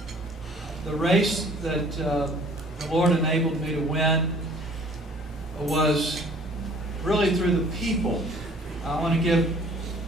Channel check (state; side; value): normal; both; correlation 0.53